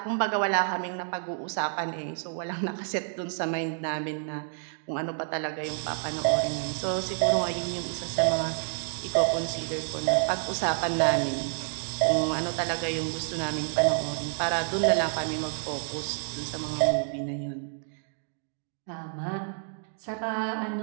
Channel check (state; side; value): silent; left; digital silence